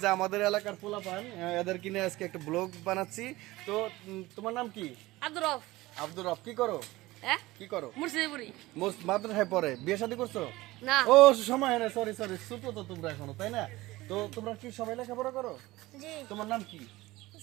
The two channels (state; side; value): quieter; left; 19.0 dB